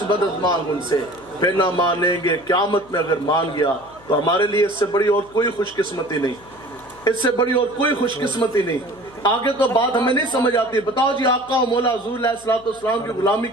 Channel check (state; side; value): noise; left; hum, 26 dB below the sound